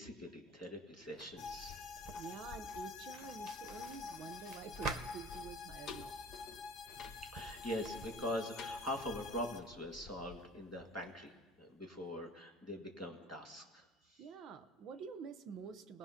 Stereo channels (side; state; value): both; normal; correlation 0.44